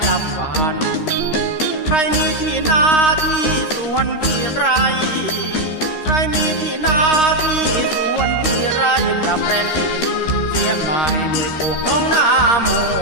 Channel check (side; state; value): right; late; 13 ms